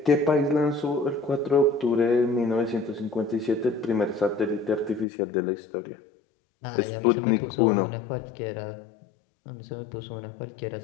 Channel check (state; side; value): drops out; right; at 5.1 s